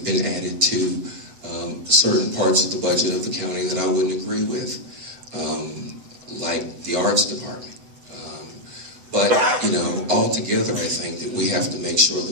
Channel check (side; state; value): left; late; 8.1 ms